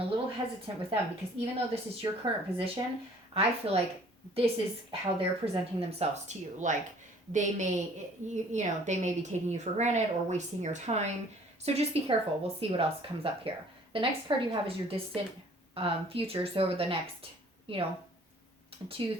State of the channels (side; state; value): both; normal; correlation 0.54